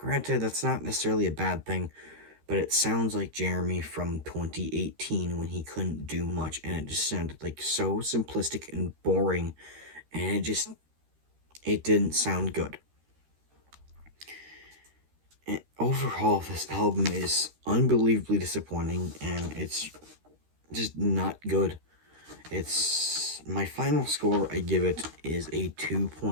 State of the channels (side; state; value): left; late; 13 ms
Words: that's not necessarily a bad thing, but it sounds like Jeremy from 2018 when he couldn't do much, and it just sounded like so simplistic and boring, and it didn't sound good. And overall, this album is unbelievably disappointing, and it's just not good. It's my final score I give it is a